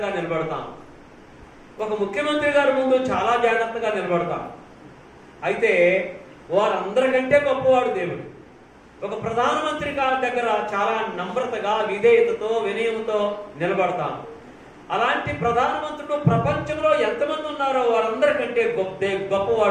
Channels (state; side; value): identical; both; correlation 1.00